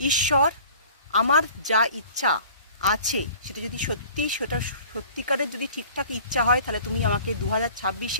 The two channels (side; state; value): both; inverted; correlation -0.48